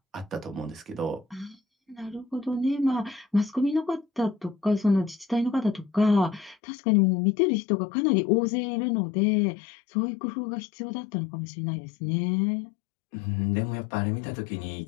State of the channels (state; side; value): drops out; right; at 6.6 s